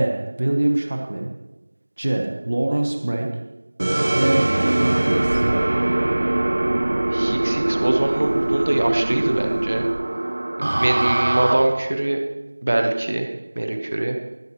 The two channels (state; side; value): inverted; both; correlation -1.00